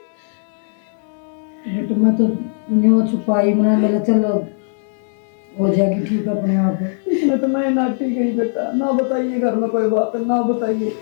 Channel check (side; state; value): right; silent; digital silence